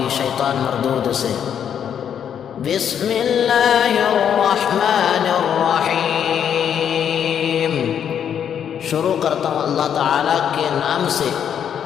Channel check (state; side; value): quieter; right; 8.7 dB